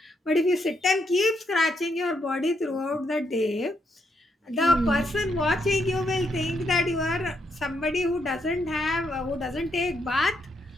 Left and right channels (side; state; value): both; normal; correlation 0.77